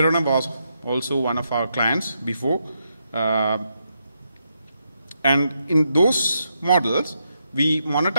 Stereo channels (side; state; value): both; inverted; correlation -0.81